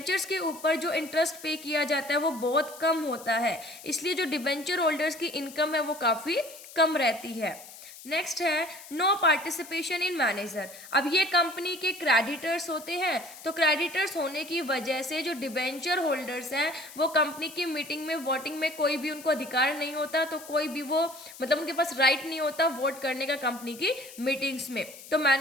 के ऊपर जो इंटरेस्ट पे किया जाता है वो बहुत कम होता है, इसलिए जो डिबेंचर होल्डर्स की इनकम है वो काफ़ी कम रहती है। नेक्स्ट है नो पार्टिसिपेशन इन मैनेजर। अब ये कंपनी के क्रेडिटर्स होते हैं, तो क्रेडिटर्स होने की वजह से जो डिबेंचर होल्डर्स हैं वो कंपनी की मीटिंग में वोटिंग में कोई भी उनको अधिकार नहीं होता, तो कोई भी वो मतलब उनके पास राइट नहीं होता वोट करने का कंपनी की मीटिंग्स में, तो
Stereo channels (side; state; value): left; noise; hiss, 17 dB below the sound